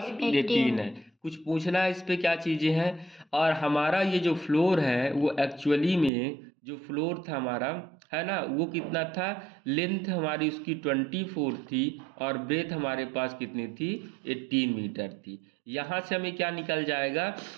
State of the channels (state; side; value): drops out; left; at 6.1 s